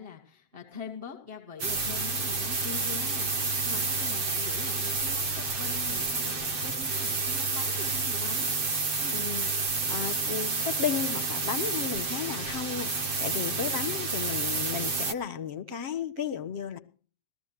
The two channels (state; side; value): late; left; 7.6 ms